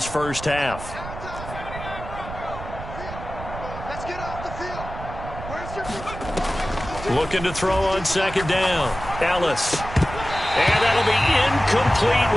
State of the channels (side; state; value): right; noise; rumble, 10 dB below the sound